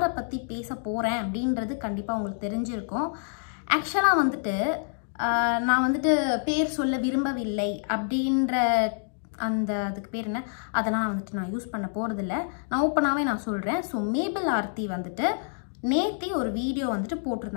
பற்றி பேச போகிறேன் அப்படின்றது கண்டிப்பாக உங்களுக்கு தெரிஞ்சிருக்கும். ஆக்சுவலாக வந்துட்டு நான் வந்துட்டு பேர் சொல்ல விரும்பவில்லை அப்படின்ற அதுக்கு பேர் என்ன, அதெல்லாம் வந்துட்டு நான் யூஸ் பண்ண போகிறதில்ல. நான் ஓப்பனாகவே நான் சொல்கிறேன். ஸோ மேபிள் ஆர்த்தி வந்துட்டு நேத்தி ஒரு வீடியோ வந்துட்டு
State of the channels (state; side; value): silent; right; digital silence